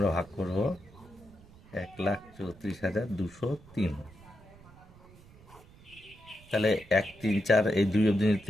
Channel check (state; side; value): noise; right; rumble, 23 dB below the sound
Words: ভাগ করব 1,34,203, তাহলে 1 3 4 এই 2 অবধি